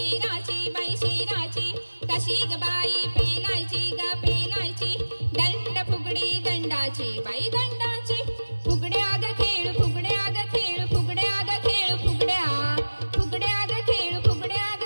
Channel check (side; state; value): both; inverted; correlation -1.00